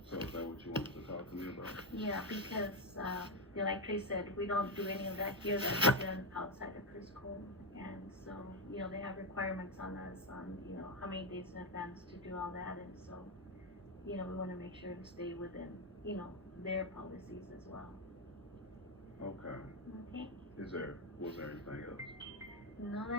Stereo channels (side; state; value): both; normal; correlation 0.07